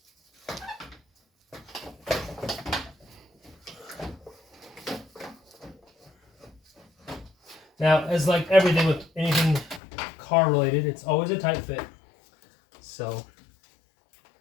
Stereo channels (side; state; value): right; drops out; at 9.8 s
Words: Now, as like everything with anything car related, it's always a tight fit. So